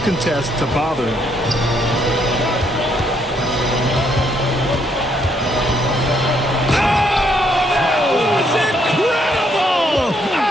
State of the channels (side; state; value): both; normal; correlation 0.71